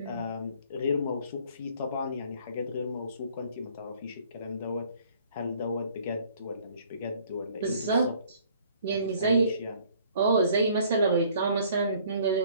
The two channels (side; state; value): both; inverted; correlation -0.58